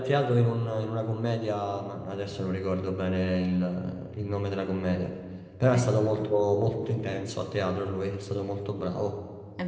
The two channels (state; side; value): identical; both; correlation 1.00